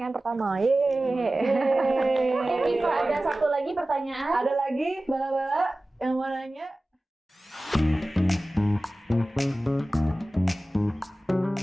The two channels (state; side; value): normal; both; correlation 0.96